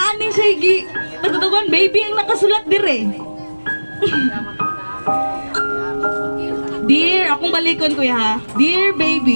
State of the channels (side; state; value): both; inverted; correlation -1.00